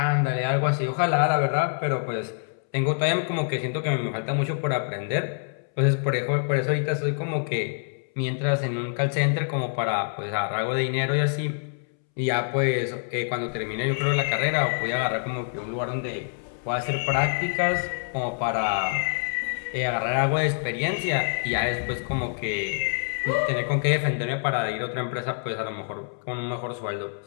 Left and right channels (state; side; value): silent; right; 61 dB below the other